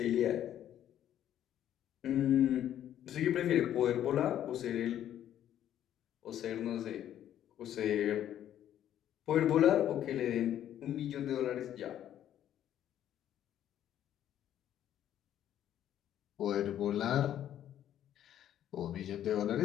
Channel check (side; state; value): right; quieter; 11.1 dB